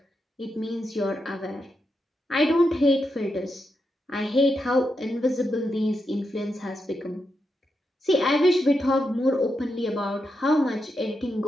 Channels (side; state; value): both; normal; correlation 0.85